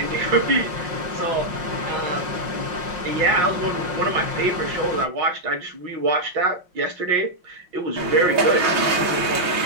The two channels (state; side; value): late; left; 5.6 ms